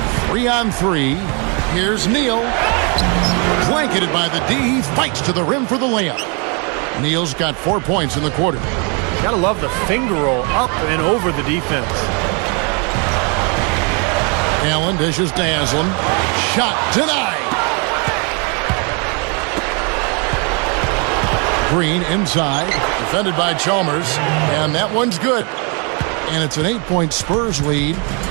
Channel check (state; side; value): quieter; left; 34.5 dB